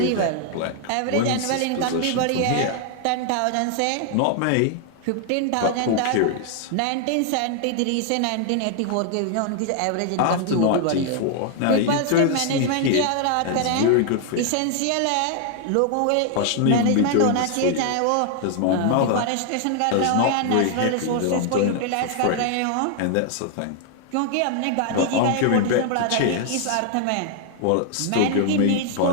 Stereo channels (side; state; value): both; different; correlation 0.00